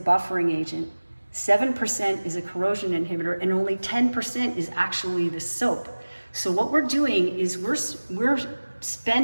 agent, 7% is a corrosion inhibitor, and only 10% is actually the soap. So what we're doing is we're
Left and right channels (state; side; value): inverted; both; correlation -1.00